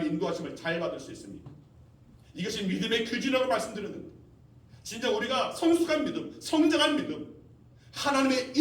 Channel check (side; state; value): both; identical; correlation 1.00